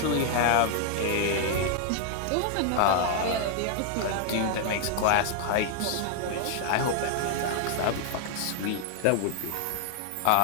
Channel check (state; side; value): different; both; correlation 0.00